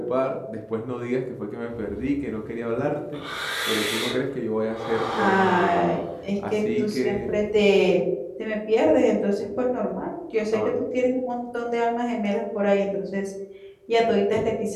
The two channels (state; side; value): identical; both; correlation 1.00